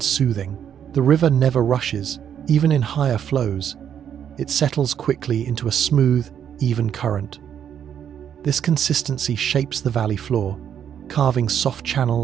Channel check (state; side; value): quieter; left; 9.0 dB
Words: soothing. The river never rushes, even in higher flows. It settles quickly into a smooth, even current. This consistency shapes the valley floor, carving soft